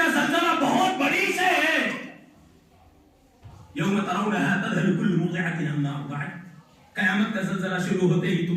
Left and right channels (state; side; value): identical; both; correlation 1.00